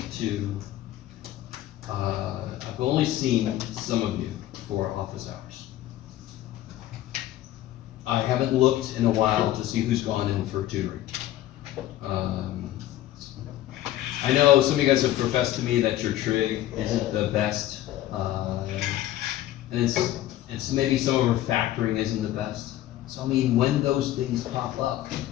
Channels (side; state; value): right; quieter; 13.9 dB